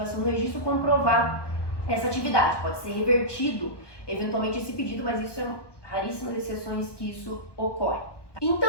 do registro, comprovar essa atividade. Pode ser revertido, eventualmente, esse pedido, mas isso é raríssimas exceções que isso ocorre.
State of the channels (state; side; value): late; right; 1.1 ms